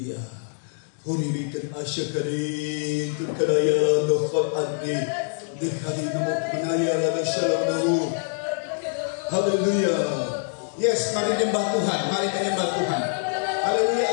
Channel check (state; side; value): silent; right; digital silence